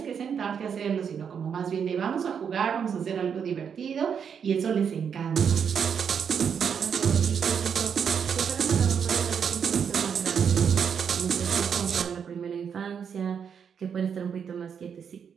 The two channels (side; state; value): left; quieter; 7.2 dB